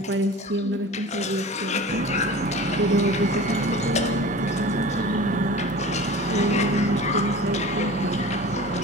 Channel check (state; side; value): normal; both; correlation 0.38